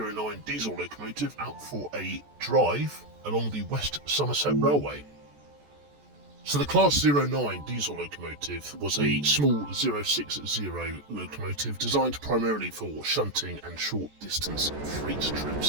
diesel locomotive out for a drive along the West Somerset Railway. So the Class 09 diesel locomotive was a small 060 locomotive designed primarily for shunting and short distance freight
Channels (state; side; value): late; left; 14 ms